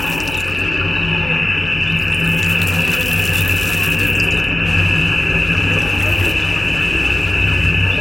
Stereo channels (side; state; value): left; noise; hum, 13 dB below the sound